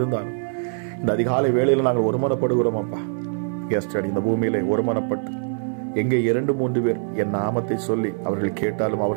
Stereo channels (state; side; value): silent; left; digital silence